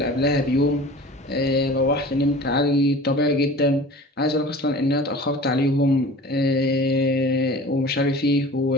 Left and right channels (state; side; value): normal; both; correlation 0.40